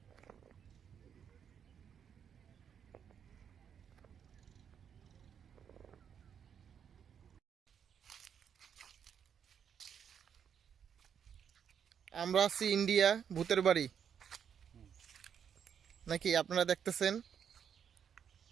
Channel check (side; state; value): left; quieter; 7.9 dB